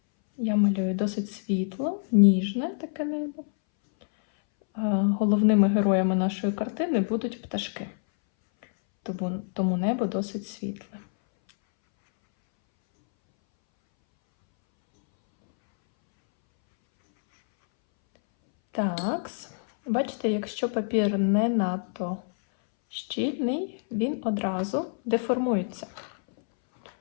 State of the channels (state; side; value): silent; right; 61 dB below the other